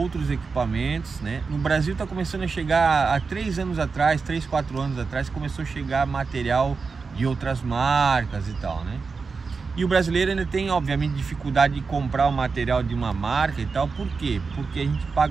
equipamentos, né? No Brasil está começando a chegar, há 3 anos atrás, 3, 4 anos atrás, começou a chegar material de outras marcas e tal, né? E o brasileiro ainda tem, obviamente, dificuldade de comprar o material de uma marca e tal. Por quê? Porque a gente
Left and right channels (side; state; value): left; quieter; 4.8 dB